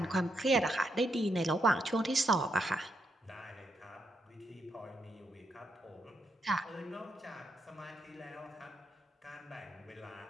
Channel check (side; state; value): both; normal; correlation 0.80